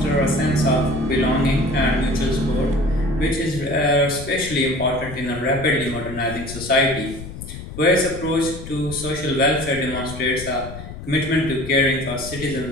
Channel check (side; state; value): left; noise; rumble, 11 dB below the sound